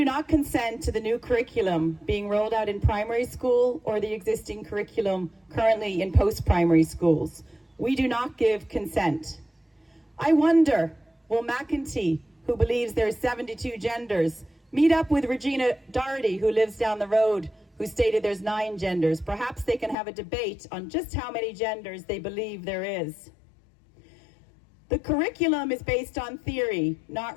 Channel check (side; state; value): right; drops out; at 20.0 s